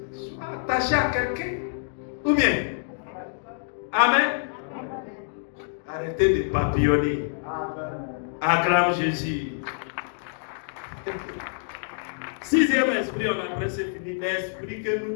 Sois attaché à quelqu'un. Ou bien. Amen. Arrêtez de papillonner. Acclame Jésus. Sixième esprit, on a presque fini. L'esprit que nous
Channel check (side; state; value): right; silent; digital silence